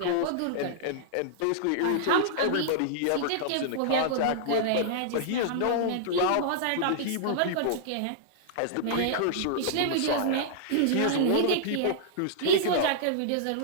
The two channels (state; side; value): different; both; correlation -0.01